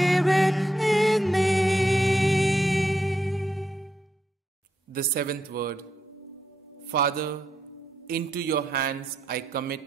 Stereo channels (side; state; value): both; normal; correlation 0.81